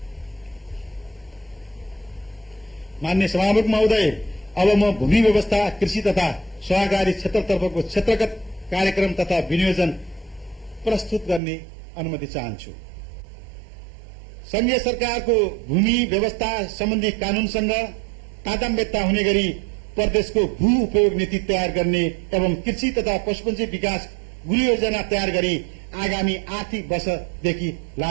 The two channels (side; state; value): left; drops out; at 11.4 s